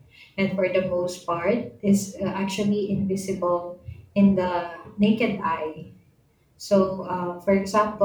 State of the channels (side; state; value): both; identical; correlation 1.00